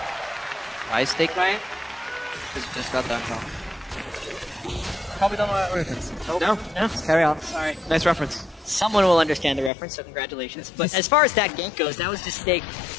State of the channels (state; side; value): drops out; right; at 9.7 s